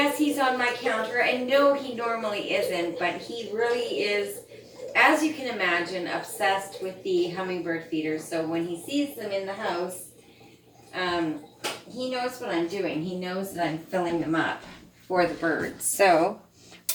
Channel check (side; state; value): both; identical; correlation 1.00